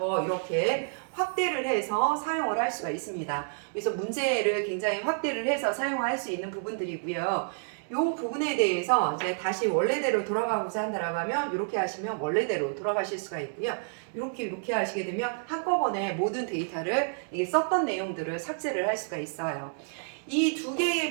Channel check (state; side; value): silent; left; digital silence